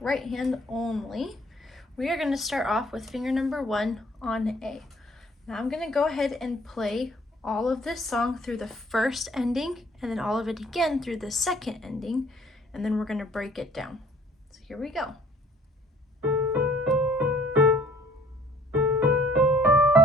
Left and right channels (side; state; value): both; normal; correlation 0.57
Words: right hand only. We are going to start off with finger number 1 on A. Now I'm going to go ahead and play all of this song through the first ending and then all of it again through the second ending, and then we're going to break it down. So here we go.